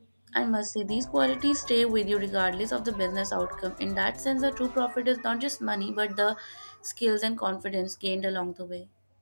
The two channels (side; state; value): both; inverted; correlation -1.00